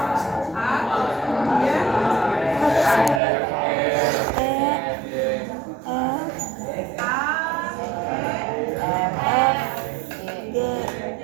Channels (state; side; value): drops out; left; at 3.2 s